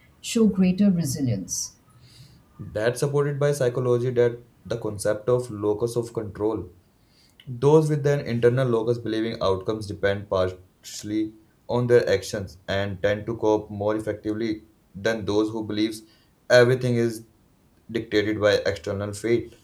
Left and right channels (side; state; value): both; identical; correlation 1.00